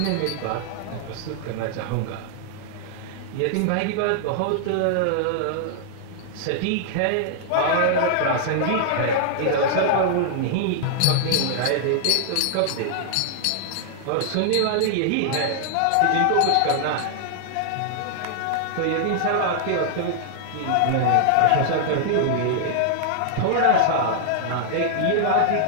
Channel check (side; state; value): both; different; correlation -0.01